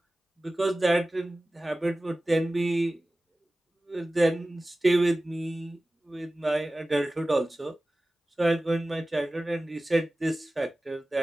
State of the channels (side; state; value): both; normal; correlation 0.97